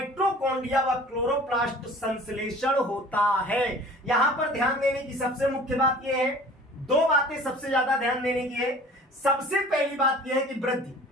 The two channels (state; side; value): normal; both; correlation 0.46